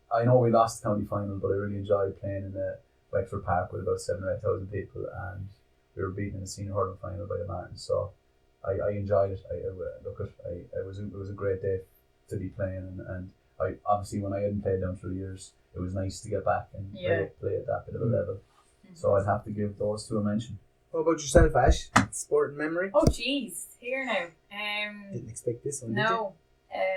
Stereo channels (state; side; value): identical; both; correlation 1.00